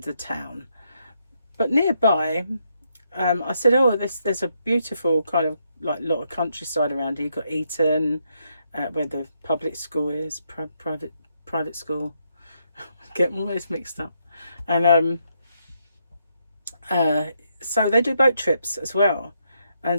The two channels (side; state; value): both; inverted; correlation -0.77